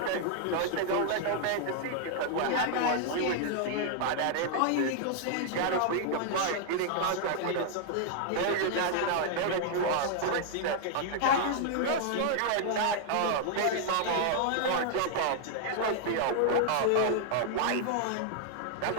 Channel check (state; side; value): different; both; correlation 0.00